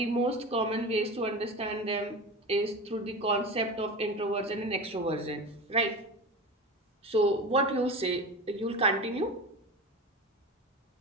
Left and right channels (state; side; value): normal; both; correlation 0.28